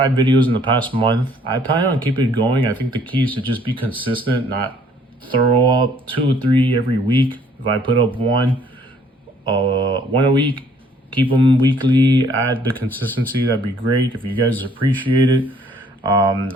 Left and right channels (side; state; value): both; normal; correlation 0.61